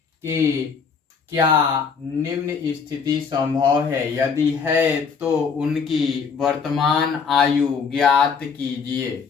क्या निम्न स्थिति संभव है, यदि है तो उनकी वर्तमान आयु ज्ञात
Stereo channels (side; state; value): right; quieter; 5.8 dB